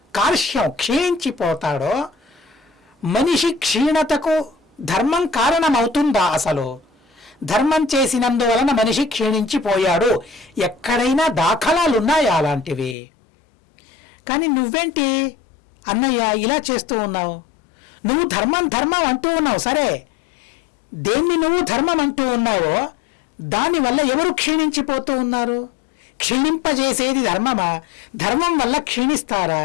కార్ష్యం క్షీణించిపోతాడో, మనిషి క్షీణతకు ధర్మం కారణమవుతుందా? అసలు ధర్మం చేసినందువలన మనిషి క్షీణించిపోయాడు, ఎక్కడైనా దాఖలాలున్నాయా అలాంటివి? కానీ నువ్వేంటి అన్నయ్య ఇలా చేస్తూ ఉన్నావు? నువ్వు ధర్మం అంటూ ఉన్నావు, సరే, దేన్ని నువ్వు ధర్మం అంటూ ఉన్నావో దానివల్ల ఎవరు క్షీణించిపోతూ ఉన్నారు? క్షీణింపజేసేది ధర్మమా? ధర్మం వల్ల క్షీణిస్తారా?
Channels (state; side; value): drops out; right; at 13.0 s